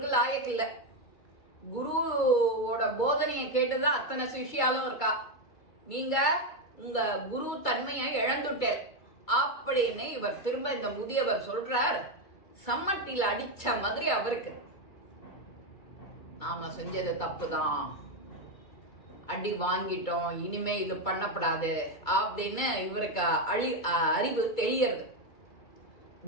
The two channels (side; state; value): right; late; 2.3 ms